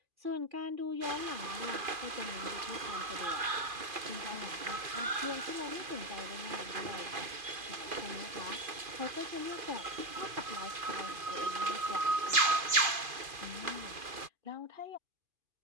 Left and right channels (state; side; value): late; left; 2.5 ms